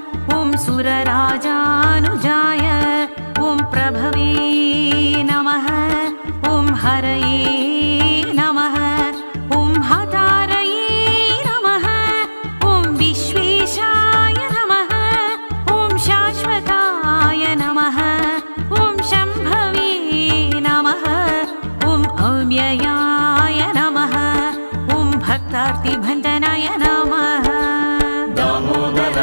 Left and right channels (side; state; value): both; inverted; correlation -1.00